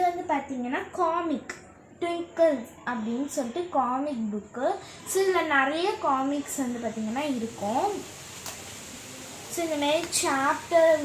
பார்த்திங்கன்னா காமிக் ட்விங்கிள்ஸ் அப்படின்னு சொல்லிட்டு காமிக் புக்கு. ஸோ இதில் நிறைய காமிக்ஸ் பார்த்திங்கன்னா இருக்கும். ஸோ இந்தமாரி சாப்டர்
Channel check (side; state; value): both; identical; correlation 1.00